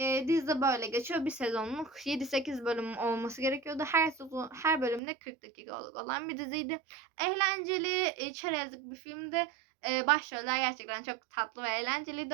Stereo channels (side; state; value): left; drops out; at 5.0 s